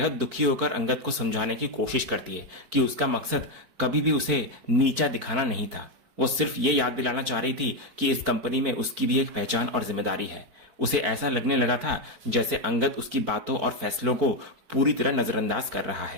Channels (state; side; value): late; left; 4.5 ms